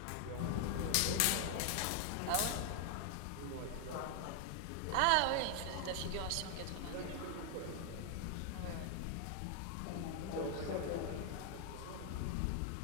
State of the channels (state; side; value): different; both; correlation 0.00